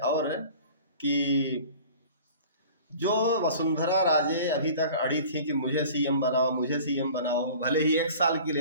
कि जो वसुंधरा राजे अभी तक अड़ी थी कि मुझे सीएम बनाओ, मुझे सीएम बनाओ, भले ही 1 साल के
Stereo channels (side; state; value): both; inverted; correlation -0.44